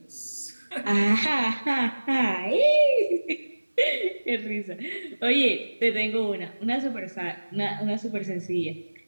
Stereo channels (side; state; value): both; inverted; correlation -1.00